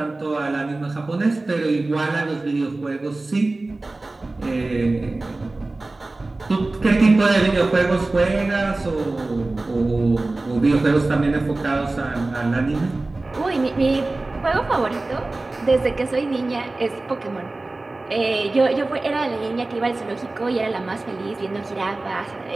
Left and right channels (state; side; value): quieter; left; 3.1 dB